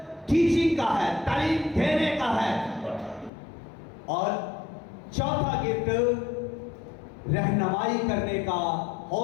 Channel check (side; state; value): right; drops out; at 3.3 s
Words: टीचिंग का है, तालीम देने का है, और चौथा गिफ्ट रहनुमाई करने का,